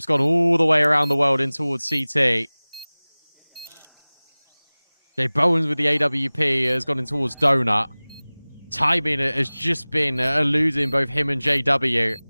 gone all the way around the world in towards CT. Jay Bowens with the AWP has gone in towards Donut. Timing has just been eluding both him and JW.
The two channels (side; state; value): both; inverted; correlation -1.00